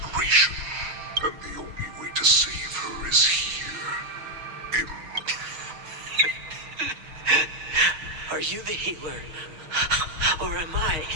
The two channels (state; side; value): late; left; 6.3 ms